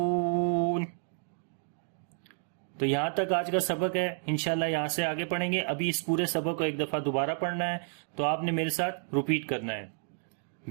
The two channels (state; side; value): silent; left; 57 dB below the other